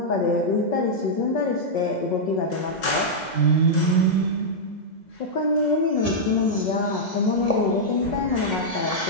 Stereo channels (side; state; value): right; late; 2.0 ms